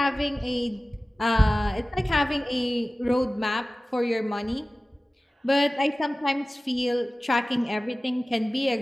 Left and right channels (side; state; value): both; normal; correlation 0.97